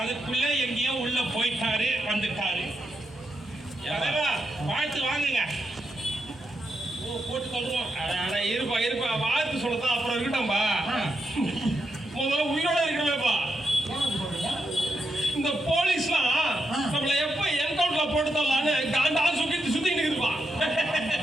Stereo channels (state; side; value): normal; both; correlation 0.84